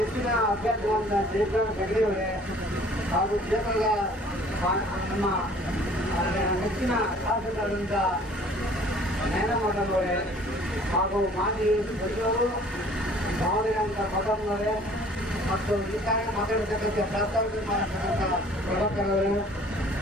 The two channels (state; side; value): normal; both; correlation 0.52